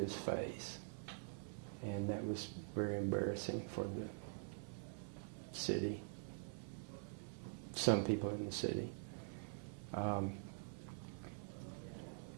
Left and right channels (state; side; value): silent; left; digital silence